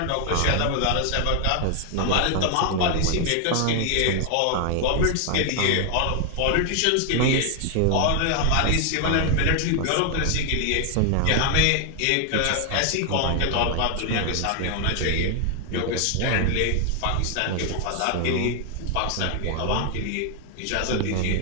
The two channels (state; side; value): different; both; correlation 0.00